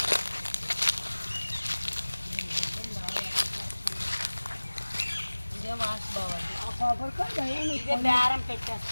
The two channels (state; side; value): inverted; both; correlation -1.00